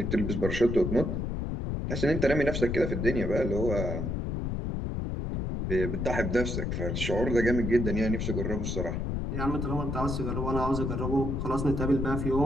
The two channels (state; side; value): noise; left; rumble, 2 dB below the sound